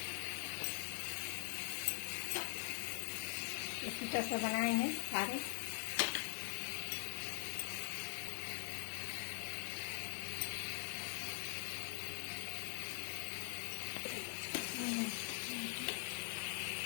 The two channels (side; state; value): right; silent; digital silence